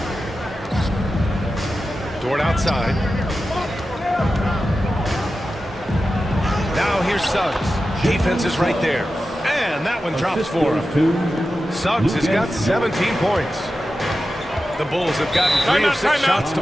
Dort outside. Now here's Suggs. Defense is right there. And that one drops for him. Suggs has got 17 points. The Bulls have gotten 3 of 6 shots to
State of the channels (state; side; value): normal; both; correlation 0.92